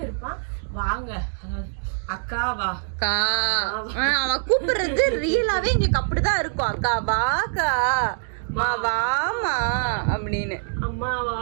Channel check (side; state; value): left; silent; digital silence